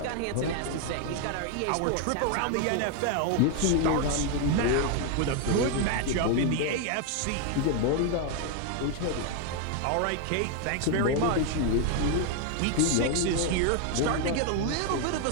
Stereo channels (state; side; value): different; both; correlation 0.01